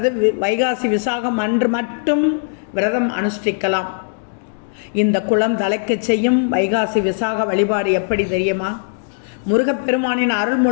வைகாசி விசாகம் அன்று மட்டும் விரதம் அனுஷ்டிக்கலாம். இந்த குளம் தலைக்கச் செய்யும் வைகாசி விசாக வழிபாடு எப்படி தெரியுமா? முருகப்பெருமானின் அருள்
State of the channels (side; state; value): right; silent; digital silence